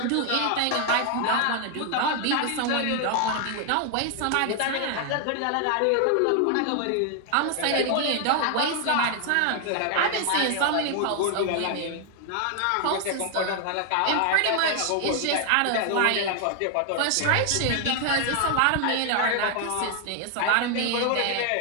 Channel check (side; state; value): both; different; correlation 0.00